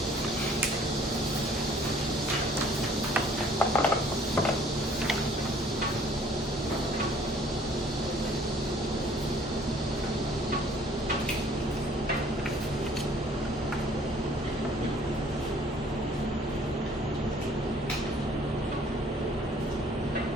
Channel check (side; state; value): both; normal; correlation 0.56